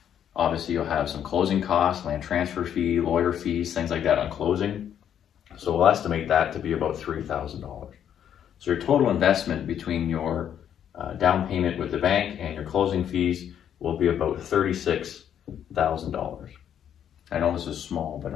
Obviously, you'll have some closing costs, land transfer fee, lawyer fees, things like that on closing. So we'll estimate that to be about $3,000. So your total investment between your down payment with the bank and your closing fees will be about $36,000. I know this is small, but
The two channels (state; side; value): quieter; right; 9.4 dB